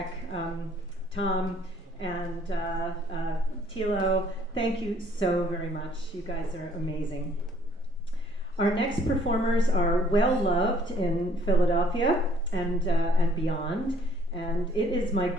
Tom and Tilo. Thank you so very much. You guys are amazing. Our next performers are well loved in Philadelphia and beyond, and it is my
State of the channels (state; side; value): normal; both; correlation 0.60